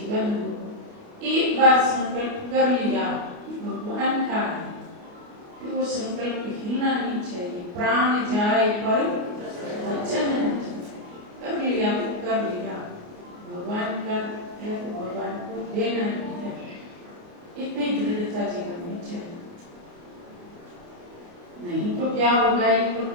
हो, एक बार संकल्प कर लिया भगवान का है, फिर वो संकल्प हिलना नहीं चाहिए। प्राण जाए पर वचन कर लिया तो कर लिया, भगवान का है तो भगवान को देना ही है। इतनी दृढ़ता जीवन में चाहिए, नहीं तो क्या होगा। ये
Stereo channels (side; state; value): left; late; 29 ms